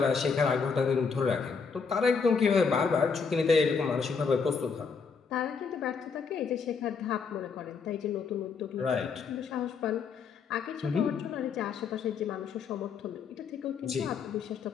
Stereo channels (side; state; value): right; quieter; 5.5 dB